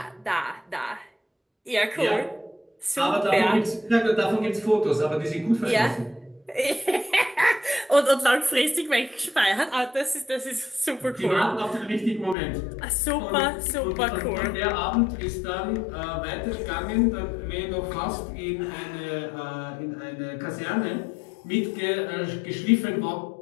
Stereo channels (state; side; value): drops out; right; at 12.4 s